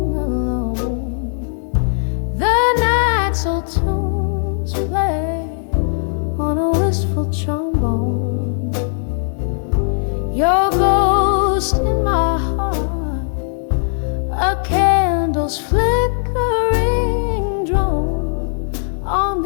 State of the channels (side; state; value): right; silent; digital silence